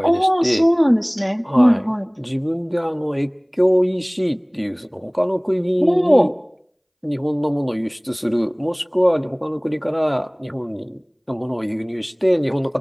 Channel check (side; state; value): both; identical; correlation 1.00